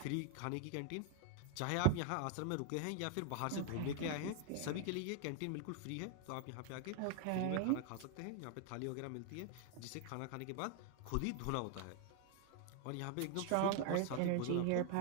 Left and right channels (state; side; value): different; both; correlation 0.01